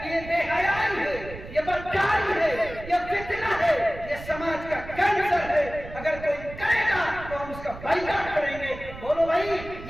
کہ یہ بے حیائی ہے، یہ بدکاری ہے، یہ فتنہ ہے، یہ سماج کا کینسر ہے۔ اگر کوئی کرے گا تو ہم اس کا بائیکاٹ کریں گے۔ بولو بھائی،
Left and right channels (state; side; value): noise; right; rumble, 13 dB below the sound